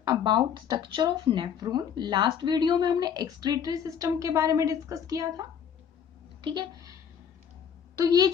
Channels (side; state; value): right; quieter; 8.0 dB